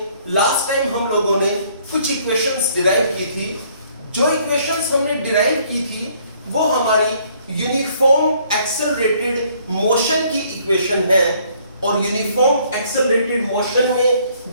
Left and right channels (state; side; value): inverted; both; correlation -0.63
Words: लास्ट टाइम हम लोगों ने कुछ इक्वेशंस डिराइव की थी। जो इक्वेशंस हमने डिराइव की थी वो हमारी यूनिफॉर्म एक्सेलरेटेड मोशन की इक्वेशन है और यूनिफॉर्म एक्सेलरेटेड मोशन में